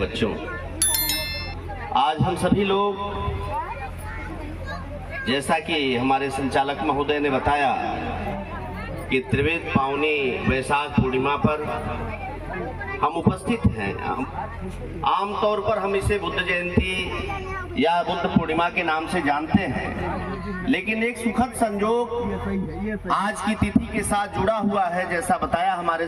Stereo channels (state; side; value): identical; both; correlation 1.00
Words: आज हम सभी लोग, जैसा कि हमारे संचालक महोदय ने बताया कि त्रिवेद पावनी वैशाख पूर्णिमा पर हम उपस्थित हैं। आमतौर पर हम इसे बुद्ध जयंती या बुद्ध पूर्णिमा के नाम से जानते हैं, लेकिन एक सुखद संजोग आज की तिथि के साथ जुड़ा हुआ है। जैसा बताया हमारे